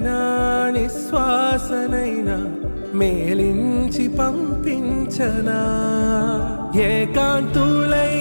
నిశ్వాసనైనా మేలించి పంపించనా.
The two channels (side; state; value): both; inverted; correlation -1.00